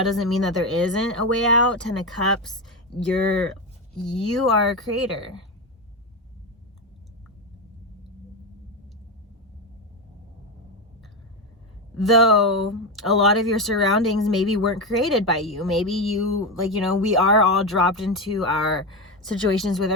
doesn't mean that there isn't a way out. 10 of Cups, you are a creator. Though a lot of your surroundings maybe weren't created by you. Maybe you, like, you know, we are all dropped into our situations with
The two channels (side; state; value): both; normal; correlation 0.13